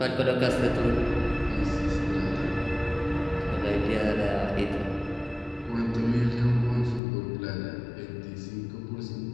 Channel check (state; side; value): drops out; right; at 7.0 s